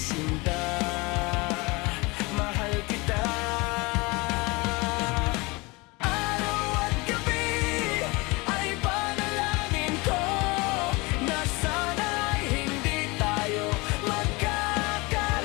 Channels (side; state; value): right; quieter; 25.2 dB